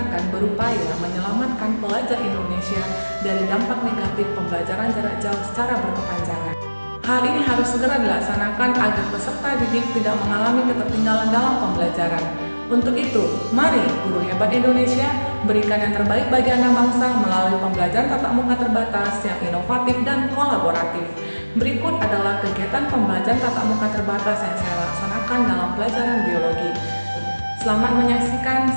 berupaya menyelamatkan pelajar Indonesia dari dampak negatif pembelajaran jarak jauh secara berkepanjangan. Hal ini harus segera dilaksanakan agar peserta didik tidak mengalami ketertinggalan dalam pembelajaran. Untuk itu, mari guru hebat Indonesia berikan yang terbaik bagi anak bangsa melalui pembelajaran tatap muka terbatas yang inovatif dan kolaboratif. Berikut adalah kegiatan pembelajaran tatap muka terbatas yang saya laksanakan dalam pelajaran biologi. Selamat menyaksikan,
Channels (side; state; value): both; inverted; correlation -1.00